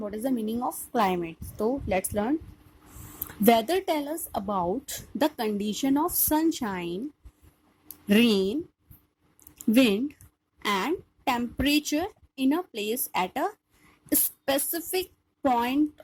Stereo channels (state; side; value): identical; both; correlation 1.00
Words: is the meaning of climate? So let's learn. Weather tells us about the condition of sunshine, rain, wind and temperature in a place at a specific point